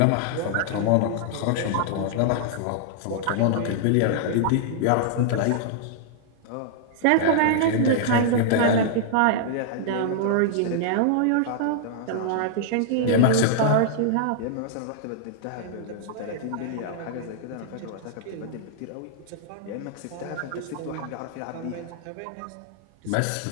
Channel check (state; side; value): different; both; correlation -0.01